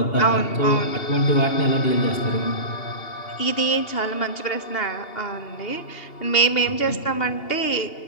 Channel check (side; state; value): right; late; 2.8 ms